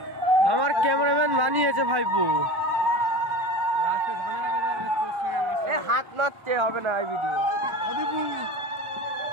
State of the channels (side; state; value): left; late; 1.2 ms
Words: আমার ক্যামেরাম্যান বানিয়েছে ভাইপু। হাত মারতে হবে না এই ভিডিও।